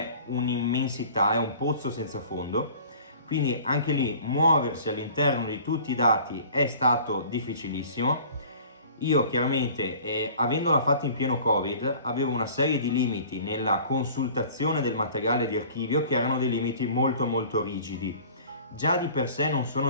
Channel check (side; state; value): both; inverted; correlation -0.47